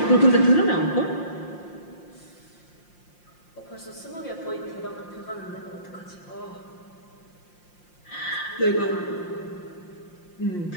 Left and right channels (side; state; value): right; late; 5.7 ms